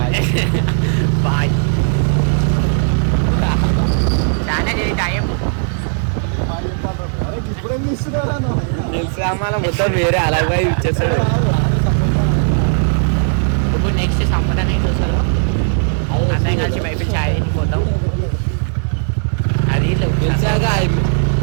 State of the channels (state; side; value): silent; left; 63 dB below the other